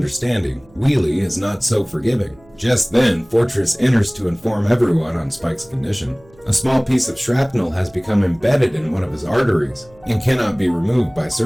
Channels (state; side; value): noise; right; hum, 28 dB below the sound